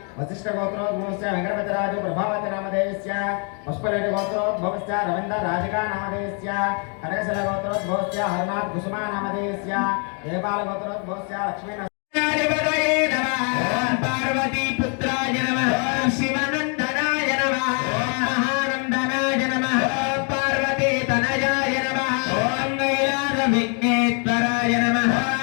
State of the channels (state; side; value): quieter; right; 38.6 dB